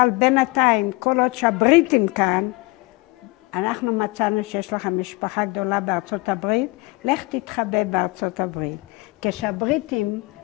בינתיים, כל עוד שהבריטים כאן, אנחנו מצאנו שיש לך משפחה גדולה בארצות הברית, לך תתחבא בארצות הברית. כשהבריטים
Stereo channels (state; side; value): quieter; right; 23.9 dB